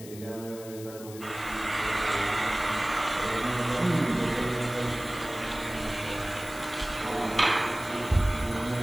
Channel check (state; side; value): noise; left; hiss, 16 dB below the sound